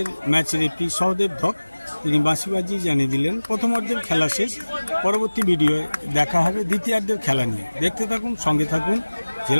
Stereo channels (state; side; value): inverted; both; correlation -1.00